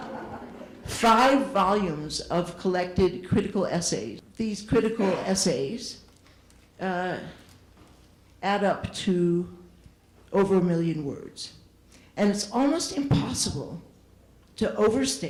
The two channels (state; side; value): identical; both; correlation 1.00